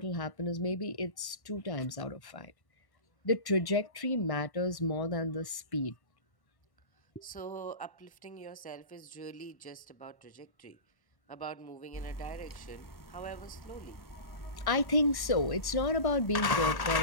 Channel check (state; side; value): late; right; 1.1 ms